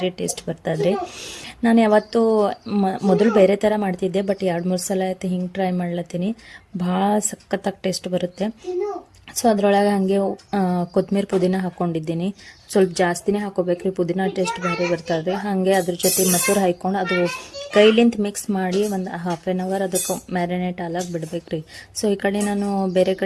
ಟೇಸ್ಟ್ ಬರ್ತದ್ರಿ. ನಾನು ಯಾವತ್ತೂ ಮೊದಲು ಬೇರೆ ಥರ ಮಾಡ್ತಿದ್ದೆ, ಬಟ್ 2-3 ಸಲ ಆಯ್ತು ಹಿಂಗೆ ಟ್ರೈ ಮಾಡ್ಲತ್ತೀನಿ. ಭಾಳ ಸಖತ್ತಾಗಿ ಟೇಸ್ಟ್ ಬರುತ್ತೆ. ಸೊ ಅದರೊಳಗೆ ಹಾಗೆ ಕೊತ್ತಂಬರಿ ಪುದೀನ ಹಾಕ್ಕೊಂಡಿದ್ದೀನಿ. ಸ್ವಲ್ಪ ಜಾಸ್ತಿನೇ ಹಾಕೋಬೇಕ್ರಿ, ಪುದೀನ ಟೇಸ್ಟ್ ಭಾರಿ ಬರ್ತದೆ. ಹಾಗೆ ಅದ್ರ ಜೊತೆ ಮೊಸರು ಹಾಕ್ಕೊಂಡು ಅದು ಕೈಲಿಂತ ಮಿಕ್ಸ್ ಮಾಡಿ ಒಂದು 1/2 ಅವರ್ ಅದಕ್ಕೆ ಮ್ಯಾರಿನೇಟ್ ಆಲಾಗಿ ಬಿಡ್ಬೇಕ್ರಿ. ಸೊ ಈ ಕಡೆ ನಾನು ಬೇರೆ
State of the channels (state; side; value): identical; both; correlation 1.00